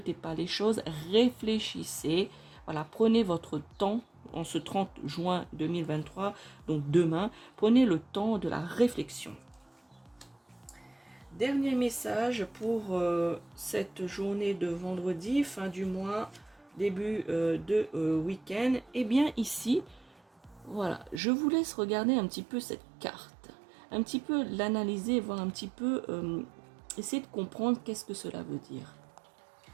pas les choses, réfléchissez. Voilà, prenez votre temps en ce 30 juin 2023, donc demain, prenez le temps de la réflexion. Dernier message pour cette journée de vendredi, fin du mois, début de week-end. Eh bien ici, voilà, je vous laisse regarder un petit peu cette carte, un petit peu l'analyser, voir un petit peu, essayer de comprendre qu'est-ce que cela veut dire.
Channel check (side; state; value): left; drops out; at 21.2 s